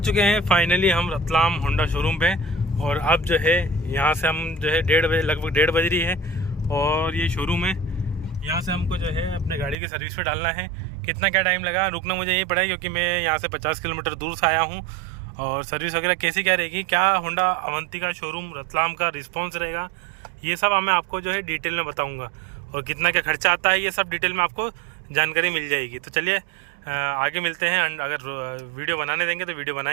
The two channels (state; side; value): drops out; left; at 9.8 s